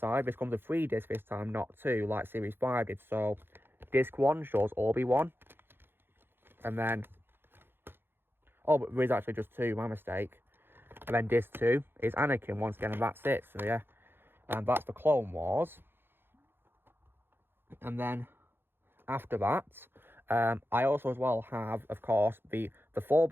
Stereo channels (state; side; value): late; left; 0.10 ms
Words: this comes with 3 discs this time, not 2, like series 5 did. So disc 1 shows Obi-Wan. And then, oh, but there is actually just 2, my mistake. And then disc 2 is Anakin once again, and that's it. So yeah, and that's the Clone Wars. And then after that, I also as well have, of course, the 4